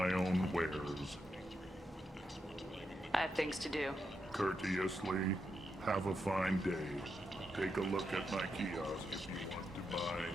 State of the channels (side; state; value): both; normal; correlation 0.84